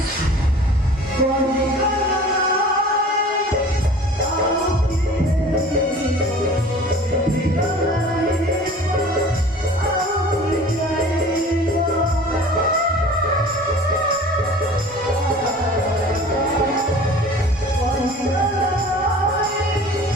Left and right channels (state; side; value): normal; both; correlation 0.44